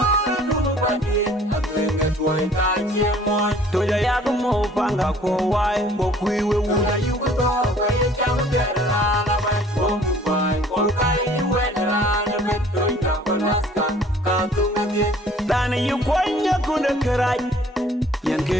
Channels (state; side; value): normal; both; correlation 0.54